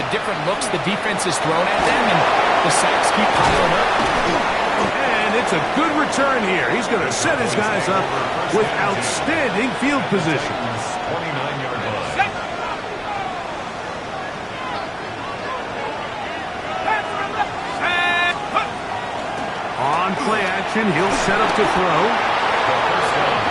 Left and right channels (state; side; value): identical; both; correlation 1.00